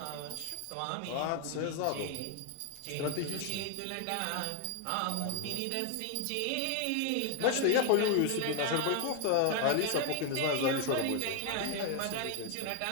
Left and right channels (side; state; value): both; different; correlation 0.01